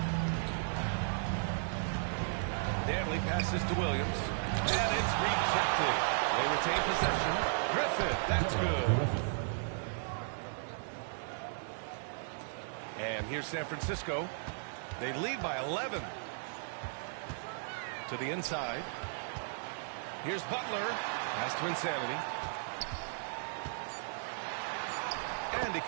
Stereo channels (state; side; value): silent; left; digital silence